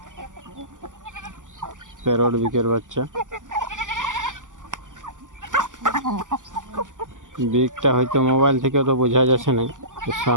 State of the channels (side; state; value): left; late; 0.87 ms